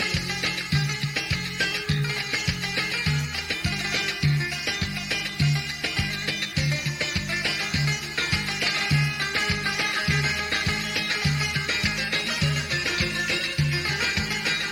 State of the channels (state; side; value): identical; both; correlation 1.00